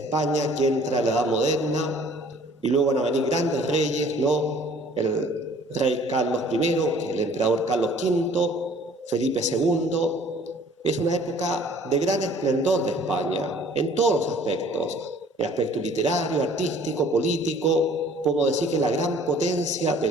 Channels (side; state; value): both; normal; correlation 0.53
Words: que entra a la Edad Moderna, y luego van a venir grandes reyes, ¿no? El rey Carlos I, el emperador Carlos V, Felipe II. Es una época de gran esplendor de España, en todos los aspectos, el aspecto literario, artístico, político. Podemos decir que es la gran potencia de